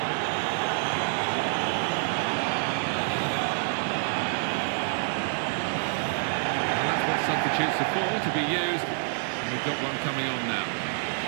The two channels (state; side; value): silent; left; 60 dB below the other